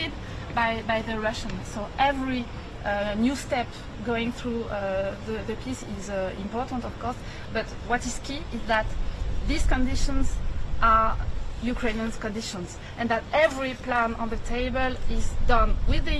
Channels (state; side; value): identical; both; correlation 1.00